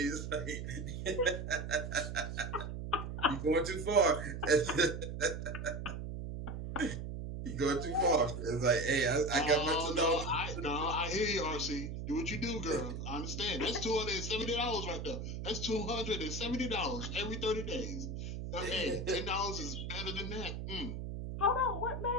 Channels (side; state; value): right; noise; hum, 5 dB below the sound